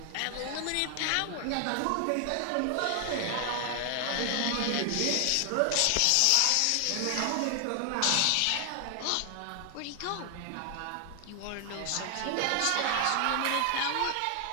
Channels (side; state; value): both; different; correlation 0.00